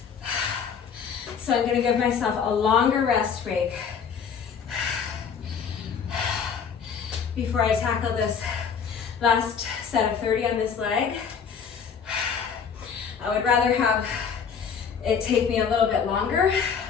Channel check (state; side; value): quieter; right; 6.7 dB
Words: So I'm going to give myself a longer rest break before I tackle this Last set of 30 on this leg. I would rather have it take me a little bit longer,